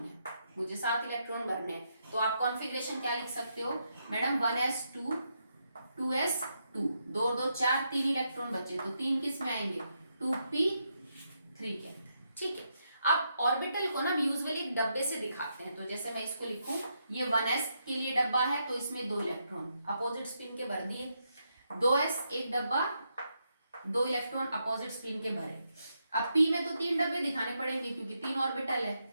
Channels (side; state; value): both; inverted; correlation -0.81